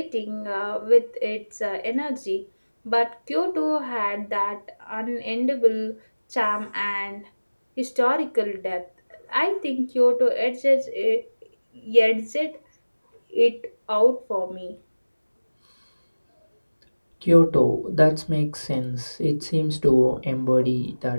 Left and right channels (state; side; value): inverted; both; correlation -1.00